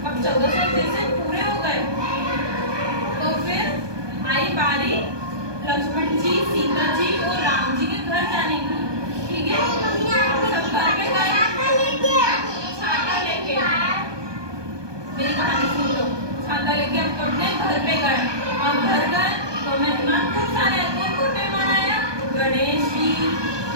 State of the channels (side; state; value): left; late; 1.2 ms